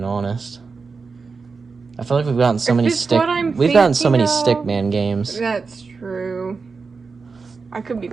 honest. I feel like we've gotten so many thinking of- Stickman games. That's true. I could be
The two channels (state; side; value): quieter; left; 4.7 dB